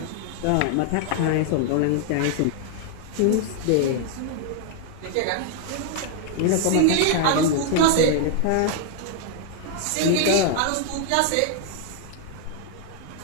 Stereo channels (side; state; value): both; different; correlation 0.00